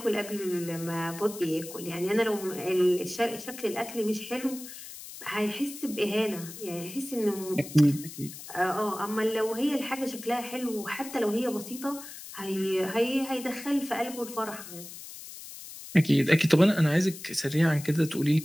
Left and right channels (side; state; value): left; noise; hiss, 13 dB below the sound